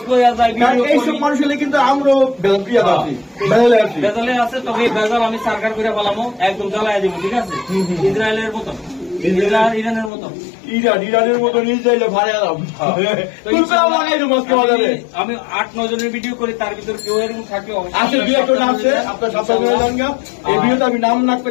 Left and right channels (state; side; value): drops out; right; at 10.1 s